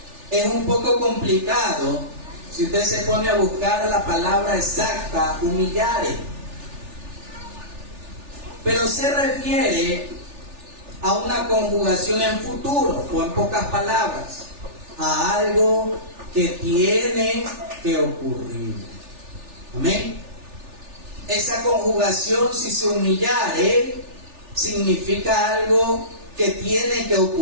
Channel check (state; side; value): late; left; 3.4 ms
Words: Es un poco complicado si usted se pone a buscar la palabra exacta, humillare. Pero se refiere a una conjugación en futuro, o en pocas palabras, a algo que tiene que ocurrir. Amén. Esa conjugación, si se humillare, significa algo que tiene que